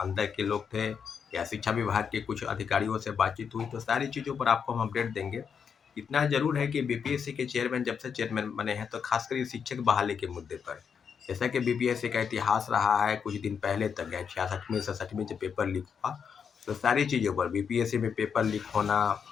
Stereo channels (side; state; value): right; quieter; 6.8 dB